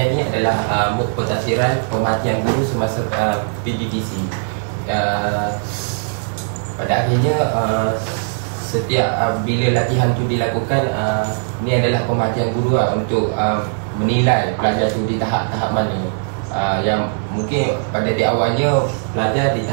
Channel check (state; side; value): silent; left; digital silence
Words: ni adalah MOOC pentafsiran pemerhatian guru semasa PDPC. Pada akhirnya setiap bila latihan tu dilakukan, ni adalah pemerhatian guru untuk menilai pelajar tu di tahap-tahap mana. Yang mungkin pada di awalnya pelajar di